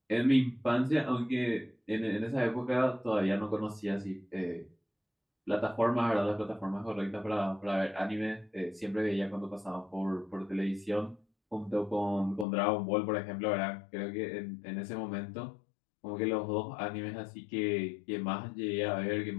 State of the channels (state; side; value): drops out; right; at 12.5 s